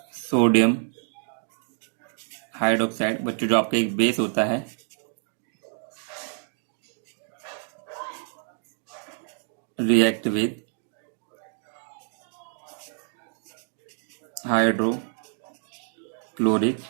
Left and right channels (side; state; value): left; silent; digital silence